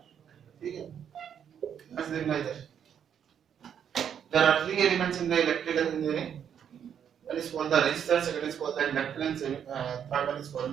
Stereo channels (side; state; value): left; quieter; 8.5 dB